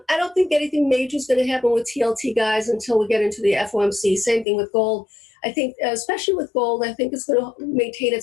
don't think anything major is going to happen with TLT, guys, until we get into the FOMC. Same thing with gold. I think, especially with gold, I think it's going to maintain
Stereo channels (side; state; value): right; drops out; at 4.5 s